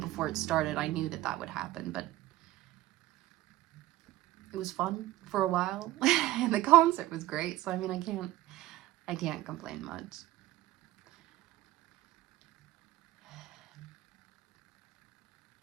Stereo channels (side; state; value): left; quieter; 16.2 dB